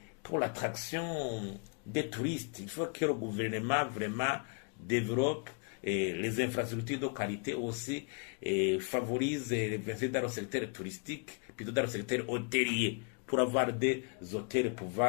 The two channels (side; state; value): right; quieter; 37.1 dB